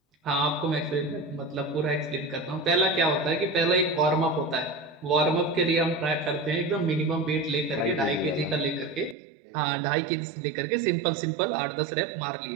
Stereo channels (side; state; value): left; drops out; at 9.2 s